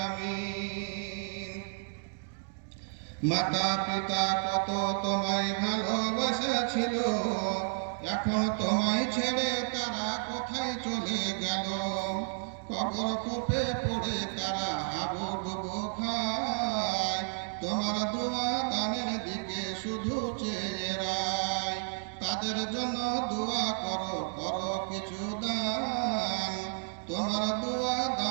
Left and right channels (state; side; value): silent; left; digital silence